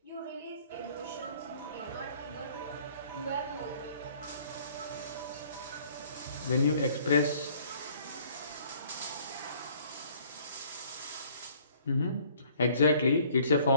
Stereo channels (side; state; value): both; inverted; correlation -0.57